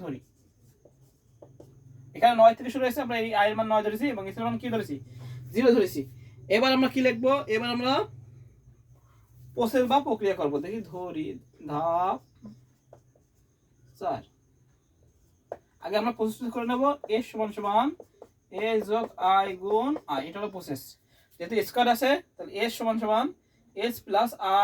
ধরি এখানে 9 থেকে শুরু হয়েছে, আমরা এই আই এর মান 9 ধরেছি এবং এস এর মান কি ধরেছি, 0 ধরেছি। এবার আমরা কি লিখবো, এবার আমরা প্রসেস বা প্রক্রিয়া করব। দেখি ধরি ধাপ 4। আগে আমরা প্রসেস করে নেব, এস সমান সমান এস যোগ আই গুণ আই, এটা হলো প্রসেস। যেহেতু স্কয়ার আছে তাহলে এস সমান সমান এস প্লাস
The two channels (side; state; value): both; identical; correlation 1.00